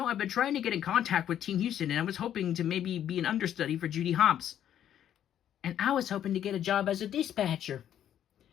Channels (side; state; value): right; quieter; 10.4 dB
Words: I've been trying to get in contact with Team Husted, and I was hoping to maybe be an understudy for Judy Hopps. And I was hoping to get a job as a dispatcher.